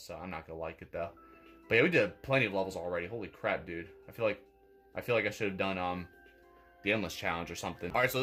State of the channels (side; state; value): both; identical; correlation 1.00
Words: I'm not gonna like it though. But yeah, we did plenty of levels already. Holy crap, dude! I feel like I should have done the endless challenge or something. All right, so